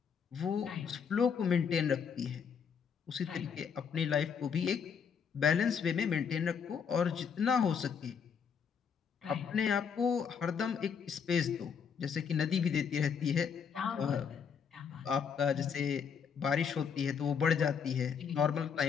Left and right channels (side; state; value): right; quieter; 6.8 dB